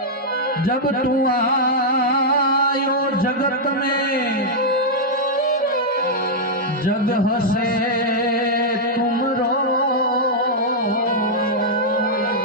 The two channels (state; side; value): normal; both; correlation -0.06